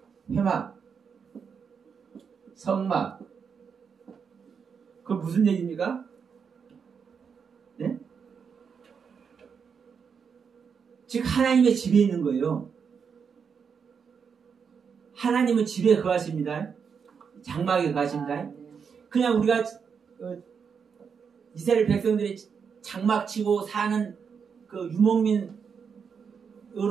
회막, 성막. 그 무슨 얘기입니까? 예? 즉 하나님의 집에 있는 거예요. 하나님은 집에 거하십니다. 장막에 거하십니다. 그냥 우리가 이스라엘 백성들이 장막 치고 사는 그 유목민으로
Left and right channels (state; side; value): quieter; left; 6.4 dB